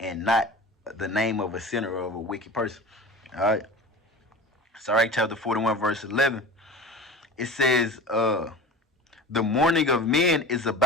not the name of a sinner or of a wicked person. All right. Sirach chapter 41, verse 11. It says, the mourning of men is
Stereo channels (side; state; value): both; normal; correlation 0.35